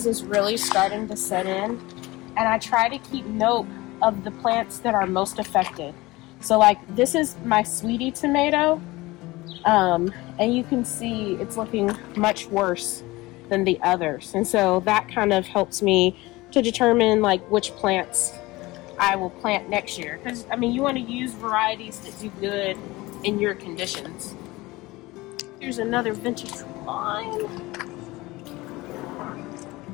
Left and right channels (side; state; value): right; quieter; 20.6 dB